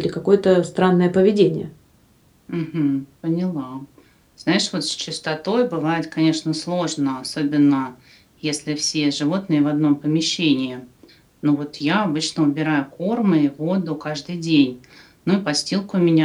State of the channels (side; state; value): both; identical; correlation 1.00